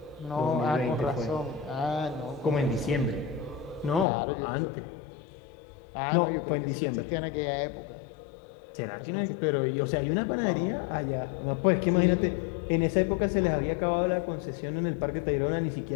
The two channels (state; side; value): drops out; right; at 4.0 s